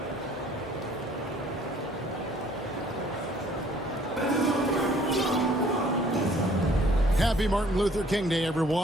Happy Martin Luther King Day,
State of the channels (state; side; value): normal; both; correlation 0.58